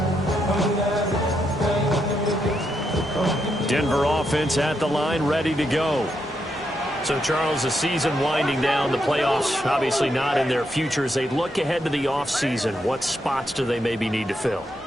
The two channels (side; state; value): both; normal; correlation 0.80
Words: Denver offense at the line, ready to go. So, Charles, the season winding down, the playoffs obviously not in their future. As they look ahead to the offseason, what spots do they maybe need to fill?